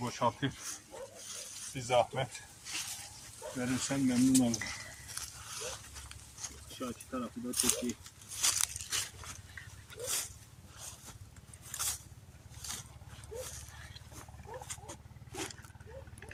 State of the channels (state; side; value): identical; both; correlation 1.00